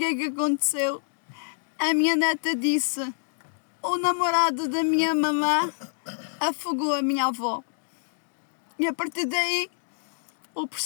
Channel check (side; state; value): right; silent; digital silence